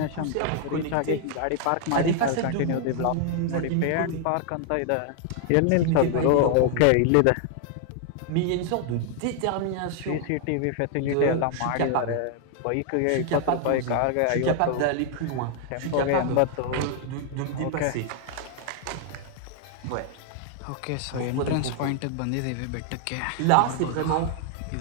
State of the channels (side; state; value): both; different; correlation 0.00